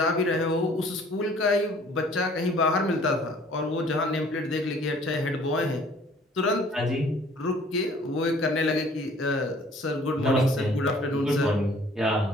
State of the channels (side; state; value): both; normal; correlation 0.55